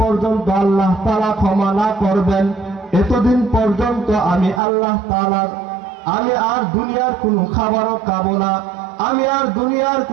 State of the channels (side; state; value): left; drops out; at 4.6 s